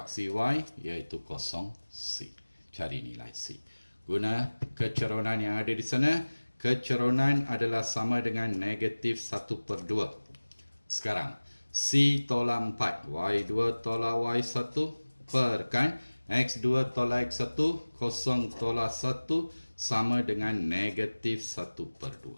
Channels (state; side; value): inverted; both; correlation -1.00